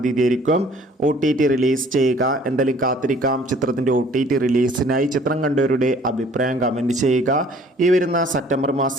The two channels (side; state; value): both; normal; correlation 0.55